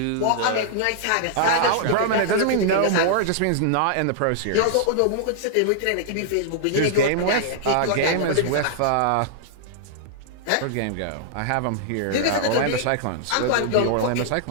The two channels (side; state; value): both; different; correlation -0.01